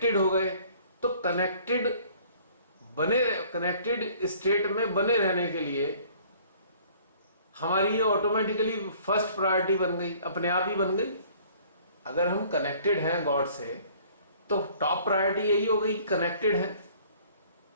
हो गए, तो कनेक्टेड स्टेट में बने रहने के लिए हमारी ये ऑटोमेटिकली फर्स्ट प्रायोरिटी बन गई, अपने आप ही बन गई। अगर हम कनेक्टेड हैं गॉड से तो टॉप प्रायोरिटी यही हो गई, कनेक्टेड है।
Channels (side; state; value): both; inverted; correlation -0.55